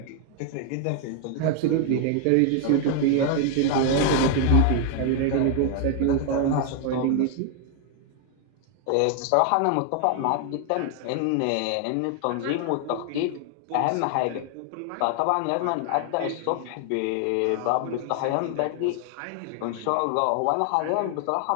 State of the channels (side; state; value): both; different; correlation 0.00